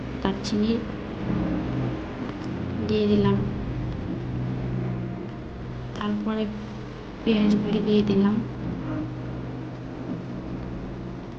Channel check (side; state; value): both; identical; correlation 1.00